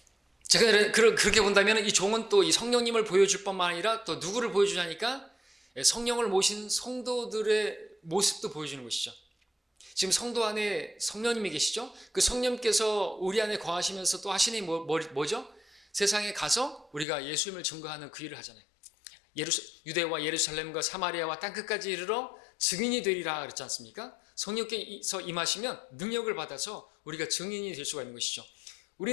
제가 그렇게 본다면 이 종은 또 이 성령님을 보여줄 뿐만 아니라 또 누구를 보여주냐니까, 성령을 모신 성도들의 모습도 보여주는 것이죠. 지금 성도 안에 성령님이 계시죠? 그 성령님께서 우리 안에 거하시면서 또 하시는 뭐죠? 세상에 가서 우리가 예수님을 증거하는 그 일을 하잖아요. 유대와 예루살렘과 사마리아와 땅끝까지 이르러 증인이 되리라 그랬지 않습니까? 성령께서 임하시면 능력을 받아서 우리가 증인이 될 수가 있는 것이죠.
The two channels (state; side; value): drops out; right; at 17.1 s